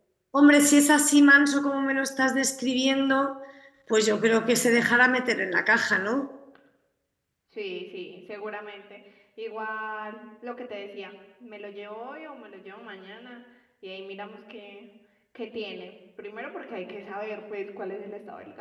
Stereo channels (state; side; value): identical; both; correlation 1.00